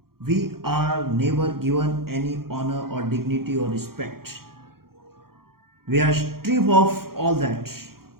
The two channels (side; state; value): left; late; 0.93 ms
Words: we are never given any honor or dignity or respect. We are stripped of all that.